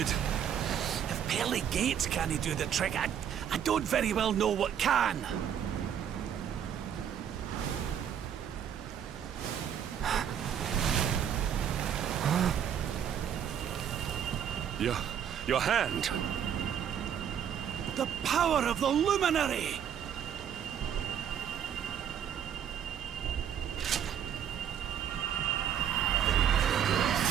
If pearly gates can't do the trick, I don't very well know what can. Your hand! The power of the luminary!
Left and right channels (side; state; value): left; quieter; 9.0 dB